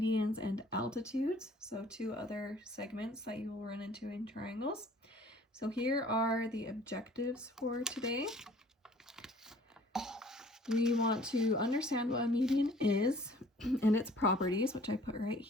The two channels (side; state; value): both; normal; correlation 0.53